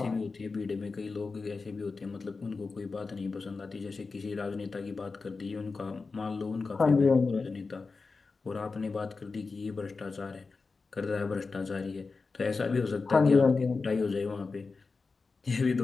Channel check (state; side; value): quieter; right; 4.3 dB